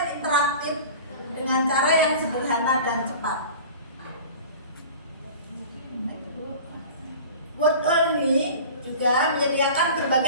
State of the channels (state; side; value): inverted; both; correlation -0.39